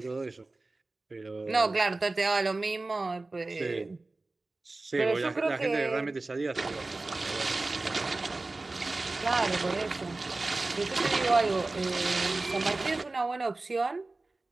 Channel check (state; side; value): quieter; left; 3.2 dB